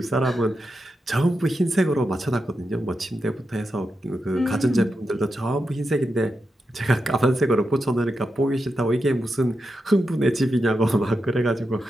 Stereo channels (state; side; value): normal; both; correlation 0.87